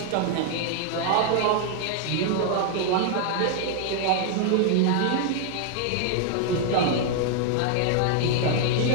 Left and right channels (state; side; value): different; both; correlation 0.00